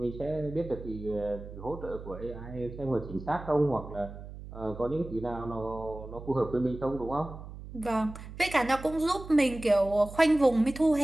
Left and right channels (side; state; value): right; noise; hum, 13 dB below the sound